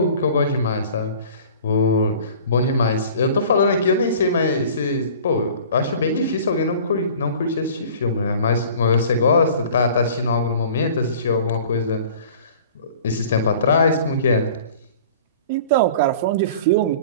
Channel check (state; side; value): inverted; both; correlation -0.46